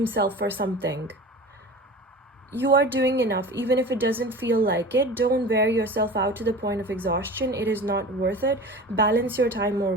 for something. You are doing enough, even if it doesn't feel like it. Don't wear yourself out to the point of exhaustion. It is not worth it. Balance your time more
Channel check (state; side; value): normal; both; correlation 0.36